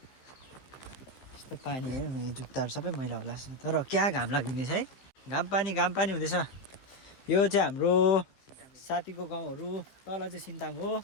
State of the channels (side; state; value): right; late; 15 ms